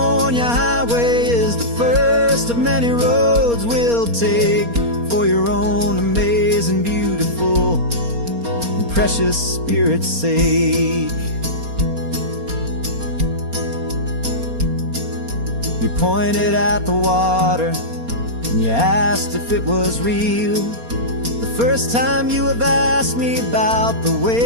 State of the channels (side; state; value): left; late; 4.3 ms